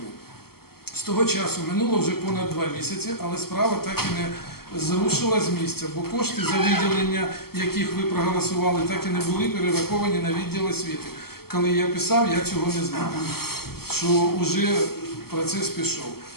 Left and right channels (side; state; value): right; late; 0.95 ms